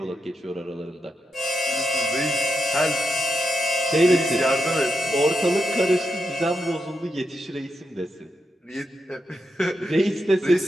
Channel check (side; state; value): both; normal; correlation 0.85